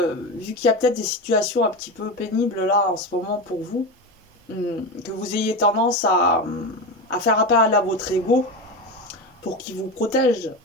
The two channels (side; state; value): both; normal; correlation 0.20